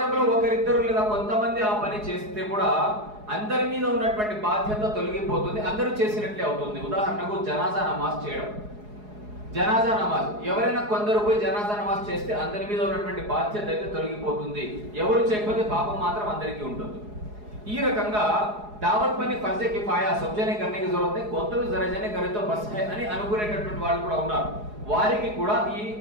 ఒకరిద్దరు లేదా కొంతమంది ఆ పని చేస్తే కూడా అందరి మీద ఉన్నటువంటి బాధ్యత తొలగిపోతుంది, అందరూ చేసినట్లే అవుతుంది. ఉదాహరణకు జనాజా నమాజ్ చేయడం, జనాజా నమాజ్ ఎవరైనా కొందరు పోయి జనాజా నమాజ్ చేస్తే అందరి మీద ఉన్నటువంటి బాధ్యత అయితే తొలగిపోతుంది, ఎవరు చేయకపోతే పాపం మాత్రం అందరికీ ఉంటుంది. ఈ రకంగా దావత్ పని ఫర్జే కిఫాయా సబ్జనే కర్నేకి జరూరత్ హై, కొంతరు జరజనే కరే తో బస్ హై అని అనుకునేటటువంటి వాళ్ళు కూడా ఉన్నారు. వారికి కూడా ఈ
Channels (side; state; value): left; late; 4.8 ms